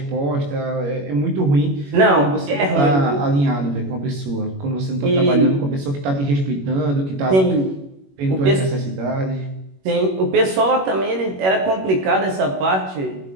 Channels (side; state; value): left; late; 21 ms